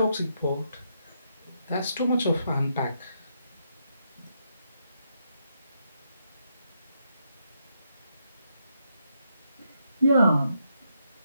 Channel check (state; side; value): inverted; both; correlation -0.79